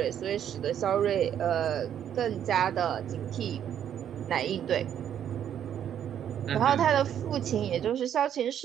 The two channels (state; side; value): quieter; left; 9.7 dB